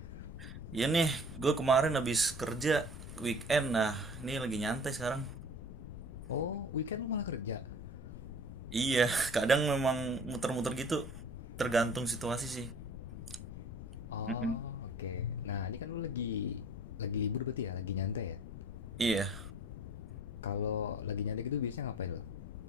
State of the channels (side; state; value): left; noise; rumble, 12 dB below the sound